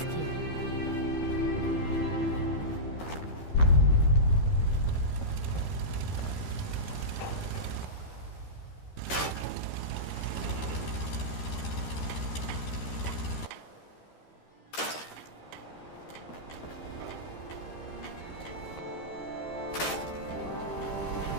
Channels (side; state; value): right; late; 13 ms